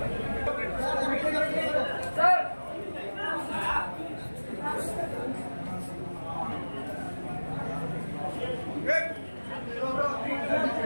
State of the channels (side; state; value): both; inverted; correlation -1.00